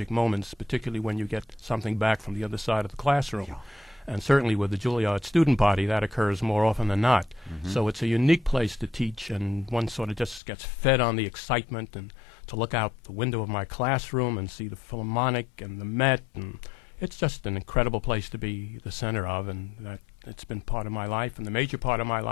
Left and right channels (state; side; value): drops out; right; at 10.4 s